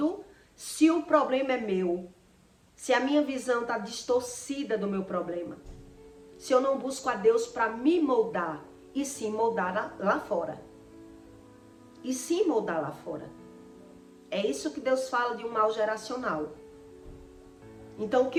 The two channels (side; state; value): both; identical; correlation 1.00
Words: se o problema é meu, se a minha visão está distorcida do meu problema. Se eu não busco a Deus para me moldar, e sim moldar lá fora. E sim moldar lá fora. É isso que Deus fala de um mal geracional. Então, o